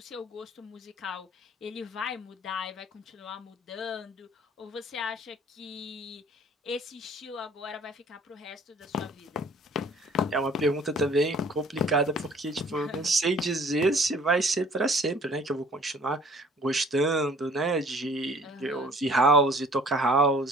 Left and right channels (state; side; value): normal; both; correlation 0.54